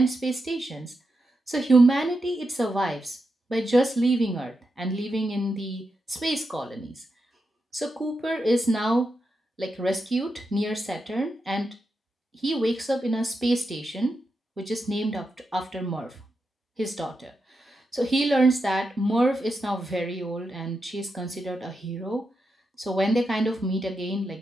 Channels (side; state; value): both; normal; correlation 0.87